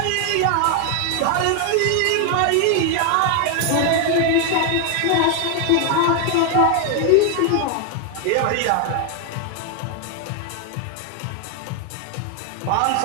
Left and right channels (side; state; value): both; different; correlation 0.00